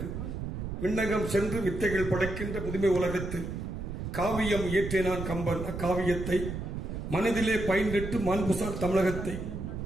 விண்ணகம் சென்று வித்தைகள் படைக்கின்ற புதுமை உலகத்தில் காவியம் இயற்றினான் கம்பன். அக்காவியத்தை மனதிலே பயின்றிட்டு மாண்புசார் தமிழகத்தை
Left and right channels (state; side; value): noise; right; rumble, 5 dB below the sound